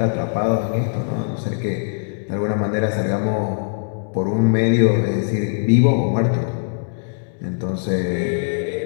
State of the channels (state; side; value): silent; right; 65 dB below the other